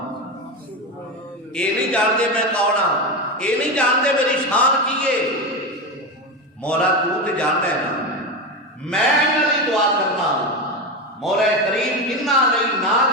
یہ نہیں جانتے میں کون ہاں، یہ نہیں جانتے میری شان کی ہے. مولا تو تے جانتا ہے نا، میں انہاں دی دعا کرنا مولا کریم انہاں نہیں نہ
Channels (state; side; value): normal; both; correlation 0.17